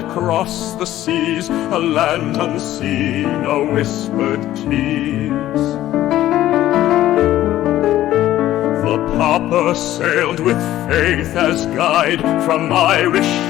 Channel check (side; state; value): right; quieter; 13.8 dB